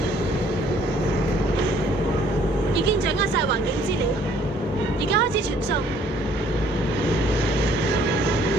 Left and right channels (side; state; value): both; normal; correlation 0.61